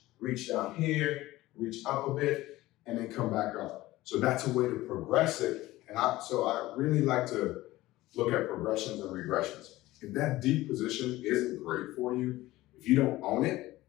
down here, reach up a bit, and then come back up. So that's a way to progress it. And so I really like to look at progressions and regressions. If that deep position isn't great for you, if you don't own it,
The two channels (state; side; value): quieter; right; 17.5 dB